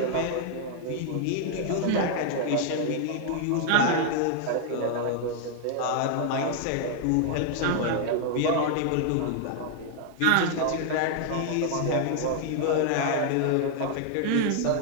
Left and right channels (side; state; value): both; different; correlation 0.00